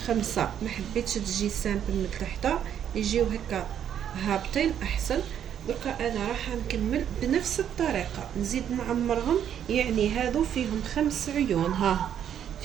5، ما حبيتش تجي سامبل من تحت، يجيو هكا هابطين احسن. دركا انا راح نكمل بنفس الطريقه نزيد نعمرهم، يعني هادو فيهم 5 عيون. ها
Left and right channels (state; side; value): quieter; left; 9.4 dB